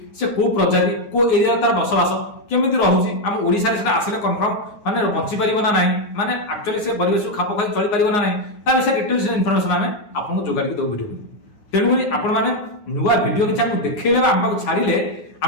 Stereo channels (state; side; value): late; right; 9.7 ms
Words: से कौ प्रजाति कौ एरिया तार बसवास केमी रोचे आम ओडिशा रे आसिले कन्फर्म माने बंची पारिबो ना नहीं माने एक्चुअली से परिवेश खाप खाई चली पारिबो ना नहीं ता विषय डिटेल्स इनफॉरमेशन आम आपको जोगाड़ी दो वीडियो तेणुक आपण मैंने नुआ वीडियो किसी आमको देखले आम पाक छाड़िले